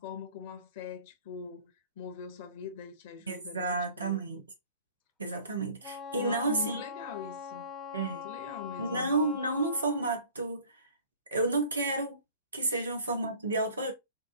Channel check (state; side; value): inverted; both; correlation -0.49